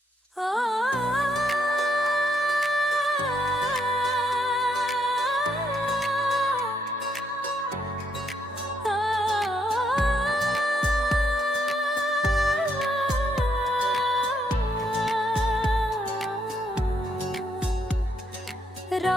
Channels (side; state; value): both; normal; correlation 0.75